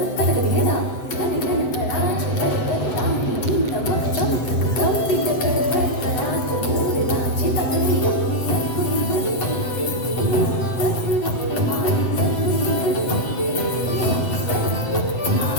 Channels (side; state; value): right; late; 7.8 ms